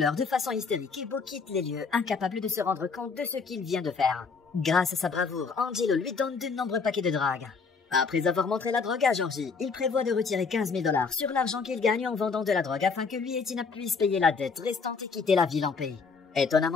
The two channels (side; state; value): right; quieter; 5.0 dB